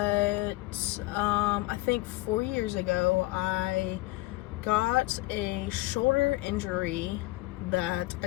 I think 4 years ago, I got a shoulder injury that I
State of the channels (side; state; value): right; quieter; 20.1 dB